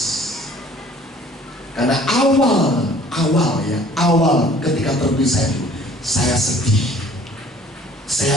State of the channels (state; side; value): normal; both; correlation 0.53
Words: Karena awal ketika terpisah itu, saya sedih.